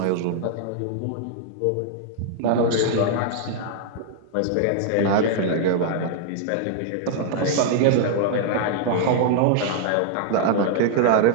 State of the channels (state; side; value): different; both; correlation -0.01